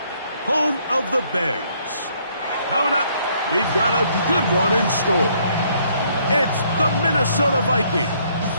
home of the Bears. Coming up, we've got a good one in store. It's the Minnesota Vikings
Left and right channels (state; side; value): inverted; both; correlation -0.67